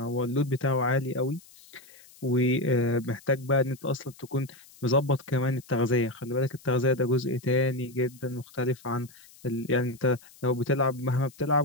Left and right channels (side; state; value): left; noise; hiss, 24 dB below the sound